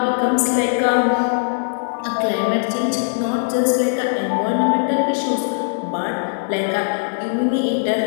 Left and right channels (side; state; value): right; silent; digital silence